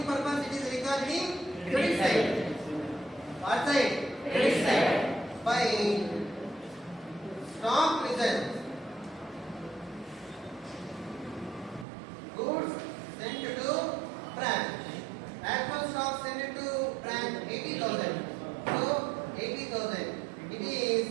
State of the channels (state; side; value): drops out; left; at 11.9 s